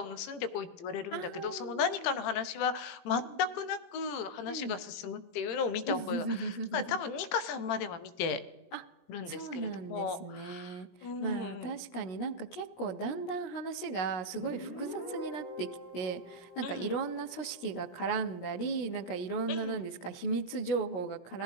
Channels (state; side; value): late; right; 16 ms